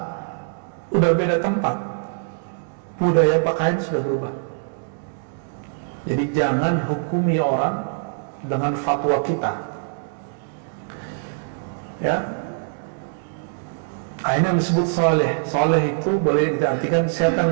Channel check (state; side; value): silent; left; digital silence